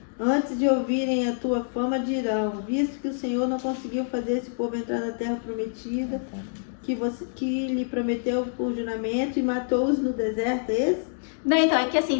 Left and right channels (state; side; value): silent; right; digital silence